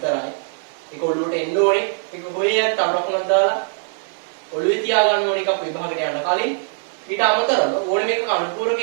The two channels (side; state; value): left; silent; 65 dB below the other